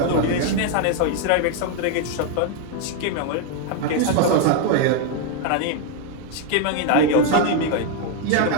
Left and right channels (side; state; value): both; different; correlation 0.01